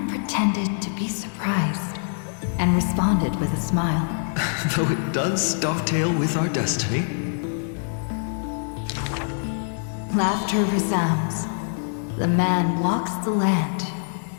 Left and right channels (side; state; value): right; silent; digital silence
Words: pretended to be surprised and responded with a smile. Though it does dovetail with our destiny. Laughter resounds. The man walks the land,